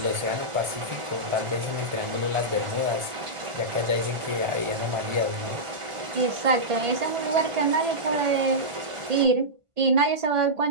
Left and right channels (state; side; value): late; left; 1.5 ms